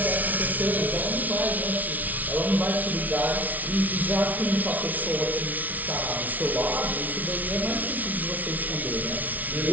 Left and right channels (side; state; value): left; late; 0.076 ms